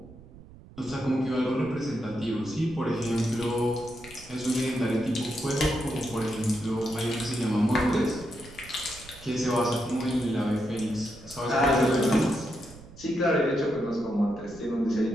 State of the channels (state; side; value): noise; right; rumble, 19 dB below the sound